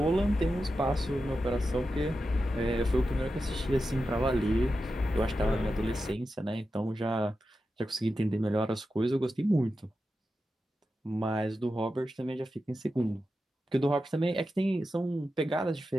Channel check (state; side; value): normal; both; correlation 0.90